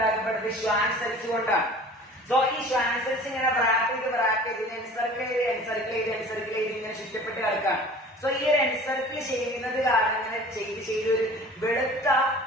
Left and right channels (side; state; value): both; normal; correlation 0.44